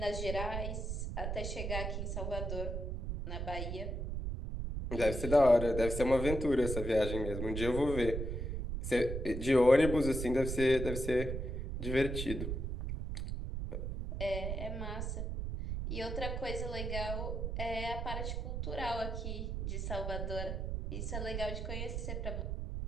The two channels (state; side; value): noise; right; rumble, 3 dB below the sound